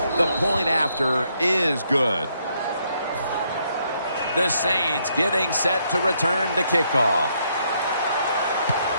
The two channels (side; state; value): both; inverted; correlation -0.73